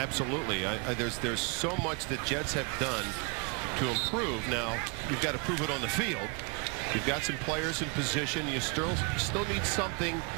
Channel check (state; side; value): quieter; left; 33.0 dB